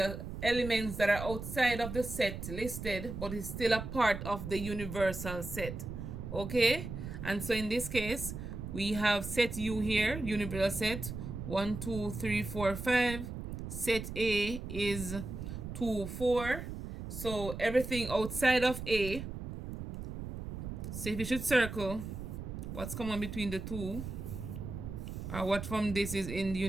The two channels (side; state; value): right; noise; rumble, 7 dB below the sound